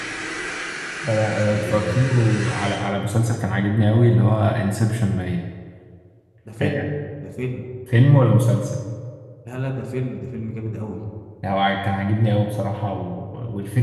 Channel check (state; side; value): identical; both; correlation 1.00